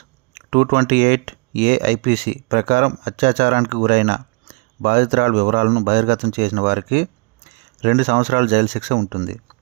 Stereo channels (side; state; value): left; quieter; 31.2 dB